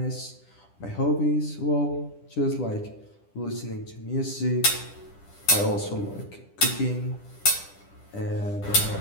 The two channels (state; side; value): late; right; 10 ms